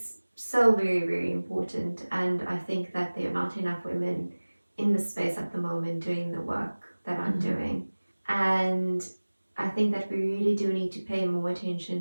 so very, very important, and I think that there are not enough women in the space at the moment doing the work that I'm doing. And I think that we really do need to pay more attention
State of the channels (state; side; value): inverted; both; correlation -1.00